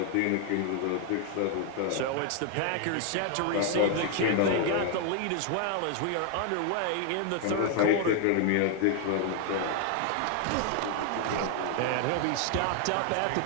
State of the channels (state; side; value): different; both; correlation 0.00